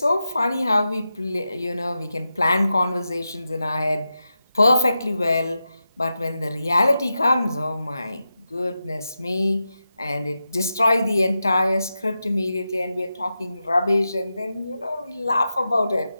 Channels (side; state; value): both; inverted; correlation -0.90